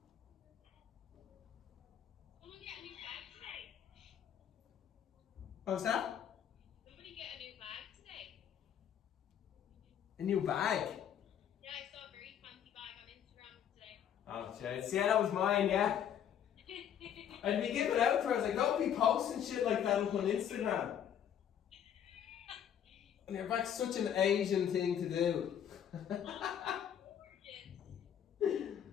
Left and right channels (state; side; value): quieter; right; 9.3 dB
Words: Someone get a new bag today. What was that? Somebody get a new bag today. A new bag? Yeah, I saw a very fancy bag on Instagram today. Oh, jeez. Yeah, that was mine, yeah. I'd be giving out to her. I was like, don't be posting shit like that up on Instagram. And your back's such an Asian thing to do.